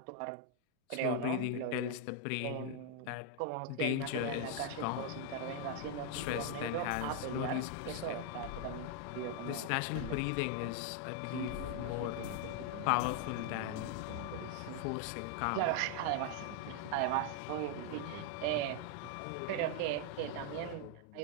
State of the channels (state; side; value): different; both; correlation 0.00